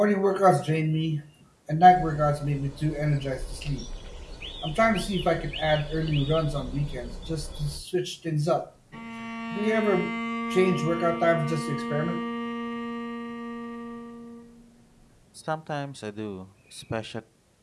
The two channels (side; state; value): both; identical; correlation 1.00